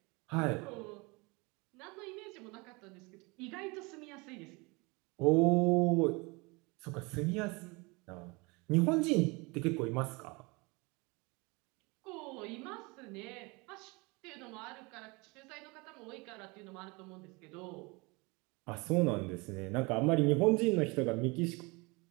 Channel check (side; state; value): left; quieter; 26.9 dB